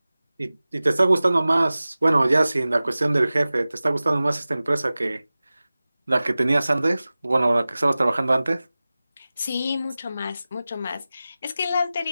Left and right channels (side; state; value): both; inverted; correlation -0.97